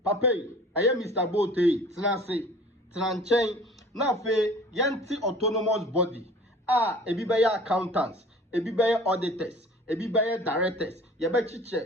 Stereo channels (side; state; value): both; normal; correlation 0.46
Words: papa aye Mr. Bote, tena nchen, na fe yenti autonomous body. Ebi beye accountants, ebi beye auditors, ebi beye directors, yebe